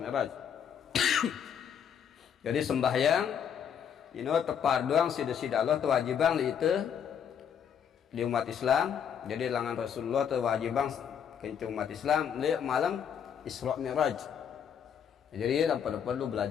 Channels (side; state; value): right; quieter; 8.1 dB